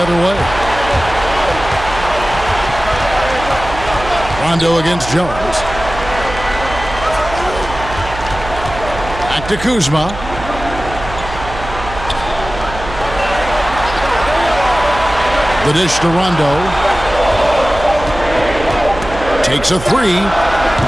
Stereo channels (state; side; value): noise; right; hum, 11 dB below the sound